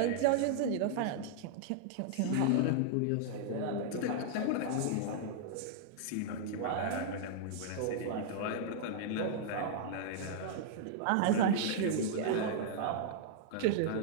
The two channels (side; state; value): both; different; correlation -0.01